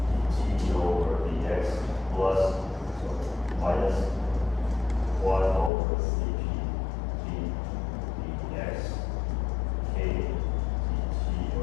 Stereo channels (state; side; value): drops out; right; at 5.7 s